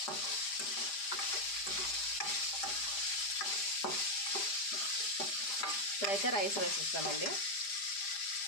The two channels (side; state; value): right; late; 5.0 ms